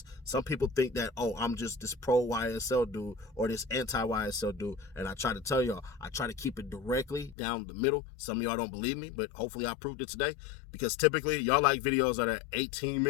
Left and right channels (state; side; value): drops out; right; at 7.4 s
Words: some people think that, oh, I'm just this pro YSL dude or this anti YSL dude, and I try to tell y'all, I try to keep it directly down the middle. Some of y'all don't believe me, but hopefully I proved it today, because typically y'all like videos that are 18